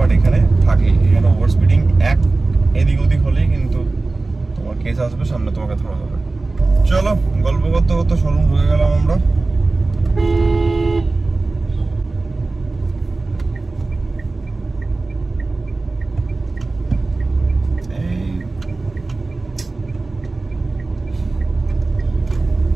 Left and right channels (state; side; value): quieter; left; 3.4 dB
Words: এখানে থাকে, এখানে ওভার স্পিডিং এক এদিক ওদিক হলেই কিন্তু তোমার কেস আসবে, সামনে তোমাকে ধরা হবে। চলো গল্প করতে করতে শোরুম ঢুকে গেলাম আমরা।